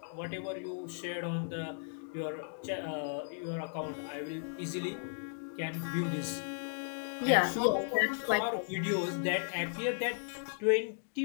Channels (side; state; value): right; silent; digital silence